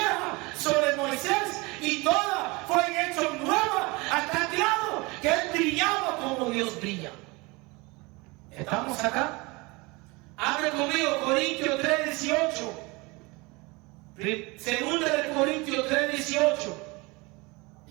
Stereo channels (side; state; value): left; quieter; 25.3 dB